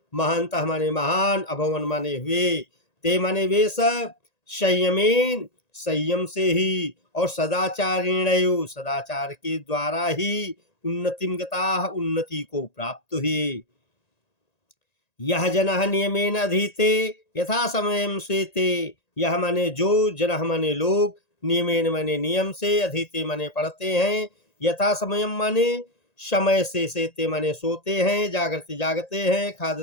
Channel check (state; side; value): late; right; 1.9 ms